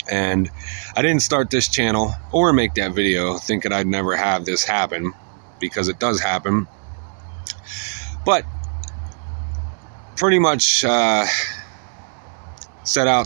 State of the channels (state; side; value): silent; left; 55 dB below the other